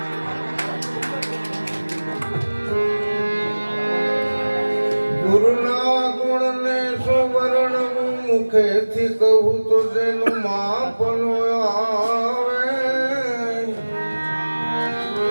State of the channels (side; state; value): both; inverted; correlation -1.00